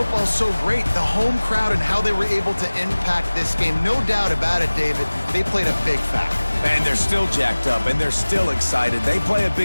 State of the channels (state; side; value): inverted; both; correlation -1.00